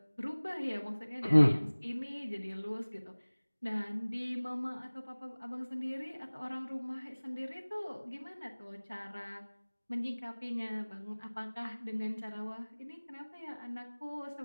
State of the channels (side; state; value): both; inverted; correlation -1.00